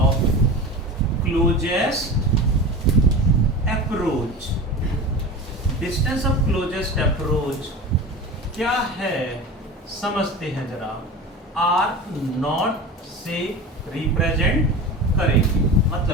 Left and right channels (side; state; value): both; normal; correlation 0.31